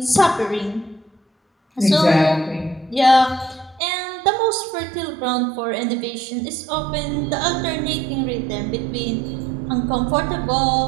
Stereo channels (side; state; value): left; drops out; at 3.8 s